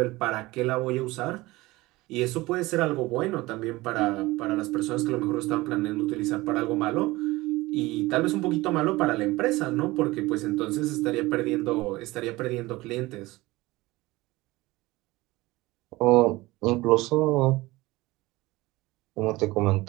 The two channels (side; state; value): left; quieter; 20.1 dB